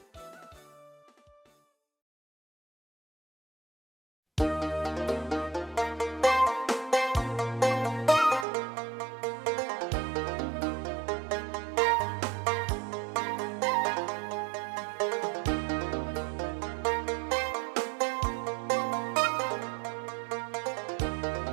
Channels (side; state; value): left; drops out; at 8.5 s